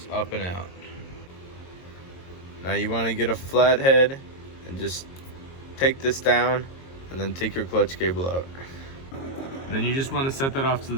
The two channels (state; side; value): late; right; 22 ms